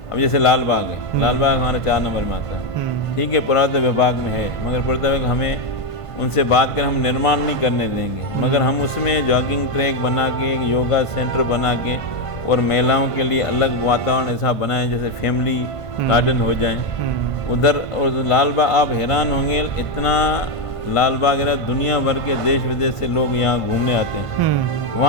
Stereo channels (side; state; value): right; late; 1.5 ms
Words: अब जैसे लाल बाग है, लाल बाग हमारे 4 नंबर में आता है, ठीक है, पुरातत्व विभाग में है, मगर पुरातत्व हमें उनसे बात कर हम निर्माण नहीं करने देंगे, मगर हम उसमें जॉगिंग ट्रैक बना के, एक योगा सेंटर बना के, और महिलाओं के लिए अलग वातावरण ऐसा बनाएं जैसे फैमिली गार्डन हो जाए उधर। और लाल बाग, आप हैरान होंगे, इतना लाल बाग है, दुनिया भर के देश विदेश से लोग यहाँ घूमने आते हैं,